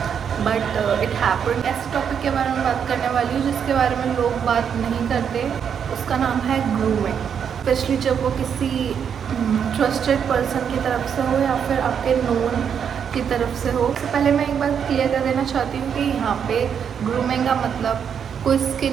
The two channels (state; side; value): quieter; left; 7.7 dB